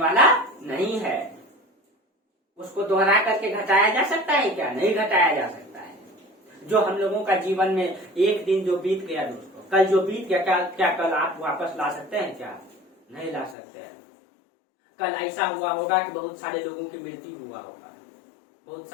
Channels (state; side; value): drops out; right; at 13.6 s